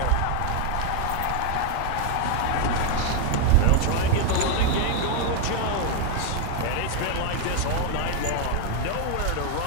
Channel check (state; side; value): different; both; correlation 0.01